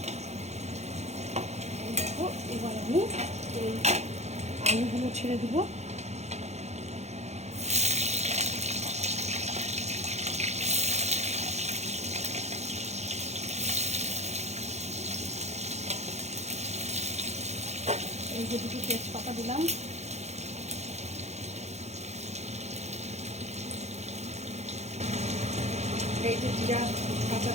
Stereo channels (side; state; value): left; late; 0.32 ms